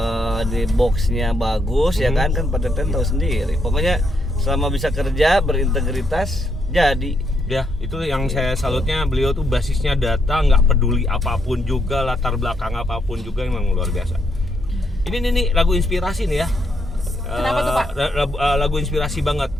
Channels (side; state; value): both; normal; correlation 0.77